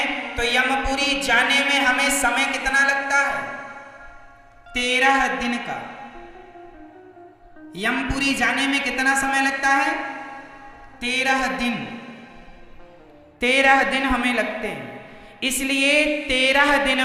तो यमपुरी जाने में हमें समय कितना लगता है? 13 दिन का। यमपुरी जाने में कितना समय लगता है? 13 दिन। 13 दिन हमें लगते हैं। इसलिए 13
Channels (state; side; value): identical; both; correlation 1.00